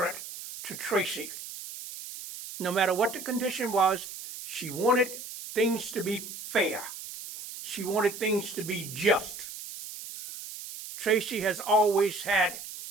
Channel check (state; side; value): noise; right; hiss, 11 dB below the sound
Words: to Tracy. No matter what the condition was, she wanted things to be fair. She wanted things to be just. Tracy has always had